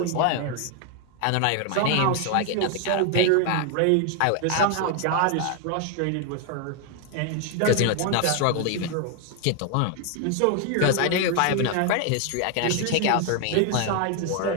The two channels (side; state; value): both; different; correlation 0.01